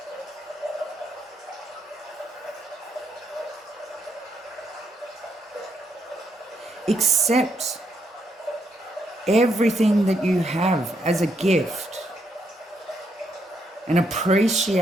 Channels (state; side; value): normal; both; correlation 0.76